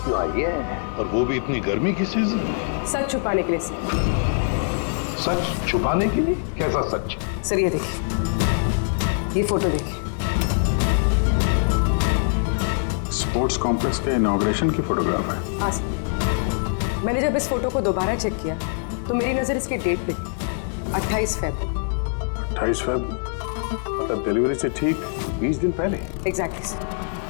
क्यों आई है, और वो भी इतनी गर्मी की सीजन में? सच छुपाने के लिए सर। सच छुपाने के लिए? कैसा सच? सर ये देखिए, ये फोटो देखिए। स्पोर्ट्स कॉम्प्लेक्स के इनॉग्रेशन की फोटोग्राफ है। हाँ सर, मैंने जब इस फोटो को दोबारा चेक किया तो मेरी नजर इसकी डेट पे थी, 28 फरवरी। 28 फरवरी मतलब डिलीवरी से ठीक 20 दिन पहले। Exactly sir.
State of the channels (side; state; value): right; silent; 63 dB below the other